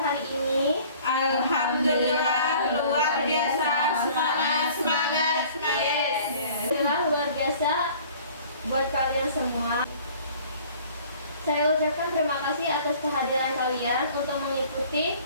hari ini? Alhamdulillah luar biasa, semangat. Yes. Alhamdulillah luar biasa buat kalian semua. Saya ucapkan terima kasih atas kehadiran kalian untuk mengikuti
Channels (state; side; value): inverted; both; correlation -0.50